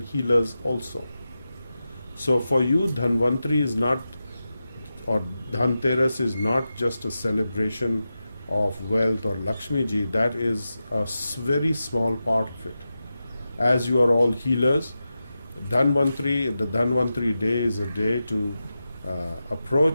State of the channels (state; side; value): inverted; both; correlation -0.92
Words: healers also. So for you, Dhanvantari is not, or Dhanteras is not just a celebration of wealth or Lakshmi ji. That is a very small part of it. As you are all healers, the Dhanvantari day is a day to